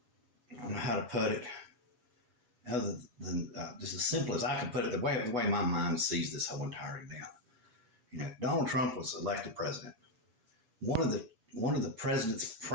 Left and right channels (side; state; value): left; late; 7.2 ms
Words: don't know how to put it other than just as simple as I can put it, the way my mind sees this whole entire event. You know, Donald Trump was elected president. One of the president's